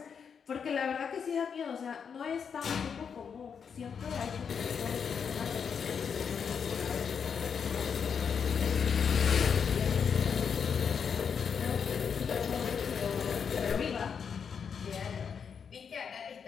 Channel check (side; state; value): right; quieter; 6.7 dB